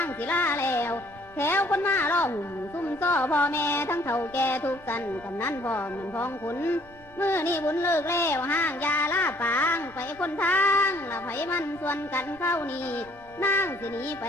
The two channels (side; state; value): right; noise; rumble, 26 dB below the sound